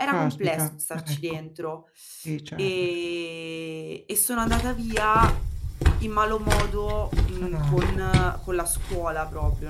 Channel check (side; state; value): both; identical; correlation 1.00